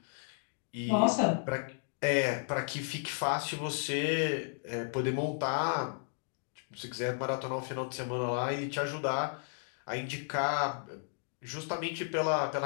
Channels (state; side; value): silent; right; digital silence